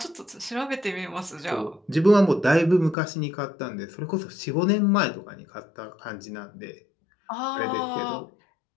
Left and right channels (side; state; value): right; drops out; at 3.0 s